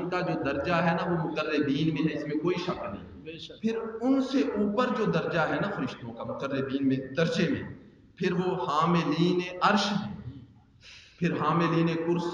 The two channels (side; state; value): both; identical; correlation 1.00